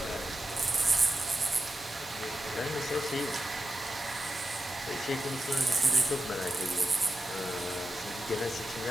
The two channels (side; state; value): both; normal; correlation 0.90